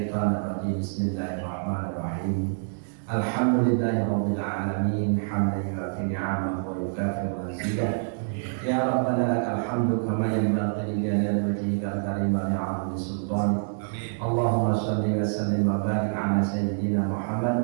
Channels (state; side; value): silent; left; digital silence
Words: rajim. Bismillahirrahmanirrahim. Alhamdulillahirabbil alamin hamdan yu'affi ni'amahu wa yukafi mazidah. Ya Rabbana lakal hamdu kama yanbaghi li jalali wajhikal karim wa li'azimi sultanik. Allahumma shalli wa sallim wa barik ala sayyidina